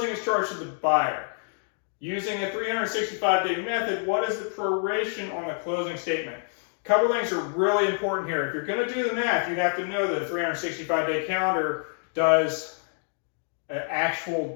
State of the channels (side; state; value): right; silent; 60 dB below the other